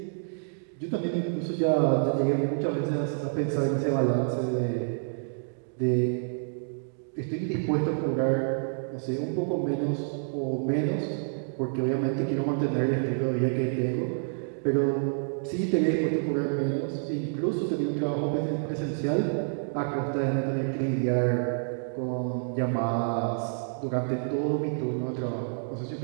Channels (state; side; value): silent; left; digital silence